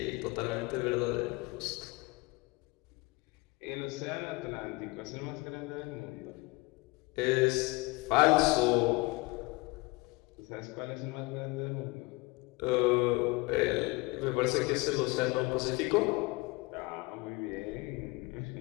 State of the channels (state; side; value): quieter; right; 24.3 dB